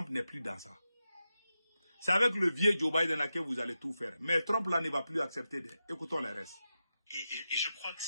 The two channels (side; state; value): both; inverted; correlation -0.90